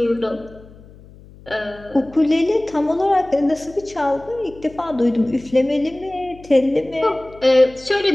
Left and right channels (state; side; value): noise; left; hum, 22 dB below the sound